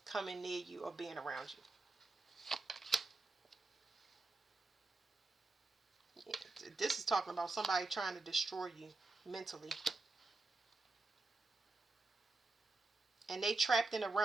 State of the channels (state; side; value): quieter; left; 3.4 dB